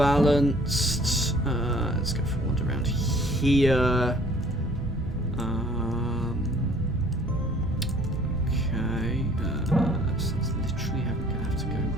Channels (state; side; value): normal; both; correlation 0.56